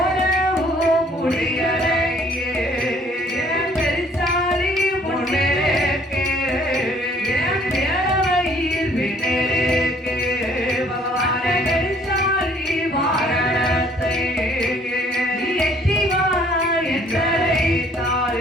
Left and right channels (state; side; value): normal; both; correlation 0.59